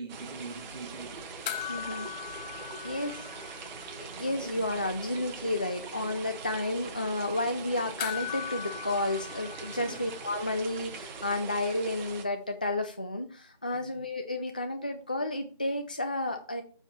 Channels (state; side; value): inverted; both; correlation -0.64